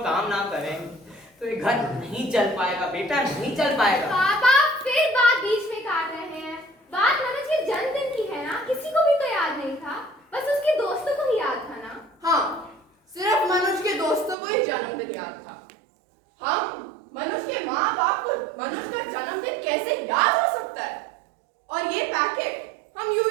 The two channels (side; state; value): left; drops out; at 14.4 s